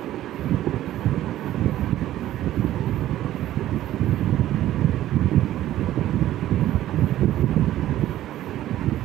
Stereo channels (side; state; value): left; quieter; 13.5 dB